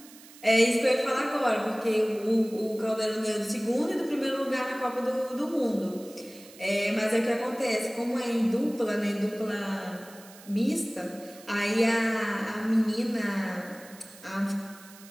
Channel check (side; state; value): right; noise; hiss, 21 dB below the sound